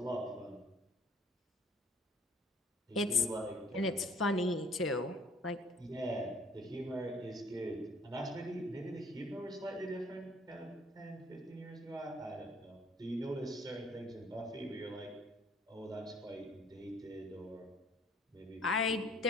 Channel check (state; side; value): normal; both; correlation 0.58